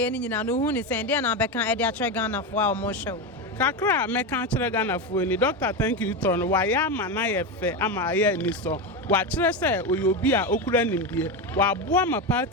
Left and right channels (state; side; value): normal; both; correlation 0.15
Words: ni nyina no uhu ni sende na be kan e de atre Ghana fo a o mo hwe kakra me kan kire Ghana fo ni doctor thank you to no wa ya ma na ye fe ama ye ni so wa kire se oyobi a okura nimdie wa boa ma